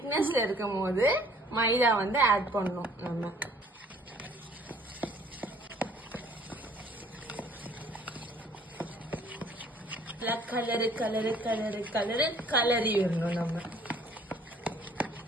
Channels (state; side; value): normal; both; correlation 0.57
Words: இருக்கும் போது மைதா வந்து ஆட் பண்ணும். நம்ம கலரி வரணும். நம்ம